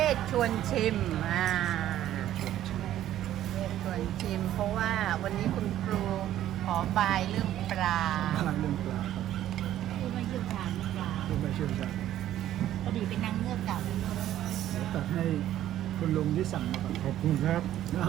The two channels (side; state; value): left; quieter; 12.5 dB